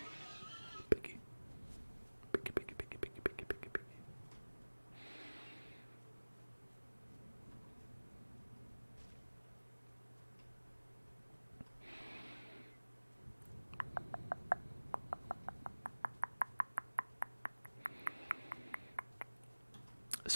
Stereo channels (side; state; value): both; inverted; correlation -1.00